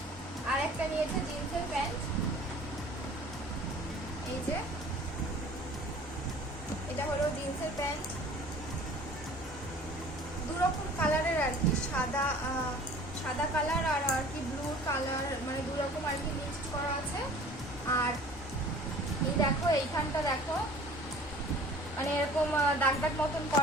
আর একটা নিয়েছে জিন্সের প্যান্ট, এই যে এটা হলো জিন্সের প্যান্ট, দু রকম কালারের আর কি, সাদা কালার আর কি ব্লু কালার, দু রকম আর কি মিক্সড করা আছে। আর এই দেখো এইখানটা দেখো এরকম দাগ দাগ মতন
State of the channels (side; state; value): both; normal; correlation 0.47